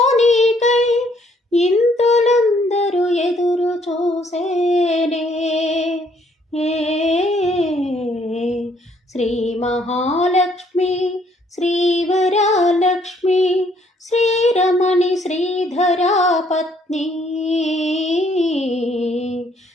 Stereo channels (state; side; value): normal; both; correlation 0.66